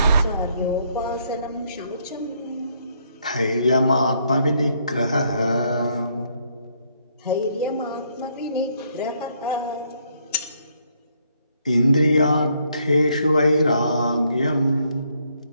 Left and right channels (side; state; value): both; inverted; correlation -0.71